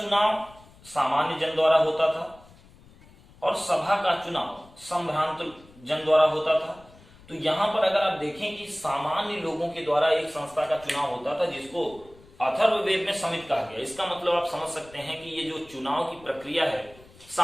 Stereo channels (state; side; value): noise; left; rumble, 24 dB below the sound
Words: सामान्य जन द्वारा होता था और सभा का चुनाव संभ्रांत जन द्वारा होता था। तो यहां पर अगर आप देखें कि सामान्य लोगों के द्वारा एक संस्था का चुनाव होता था, जिसको अथर्ववेद में समिति कहा गया। इसका मतलब आप समझ सकते हैं कि ये जो चुनाव की प्रक्रिया है,